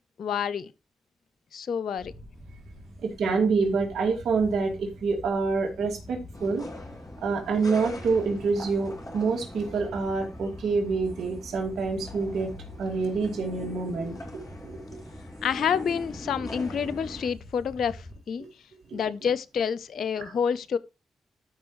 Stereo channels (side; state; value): both; normal; correlation 0.75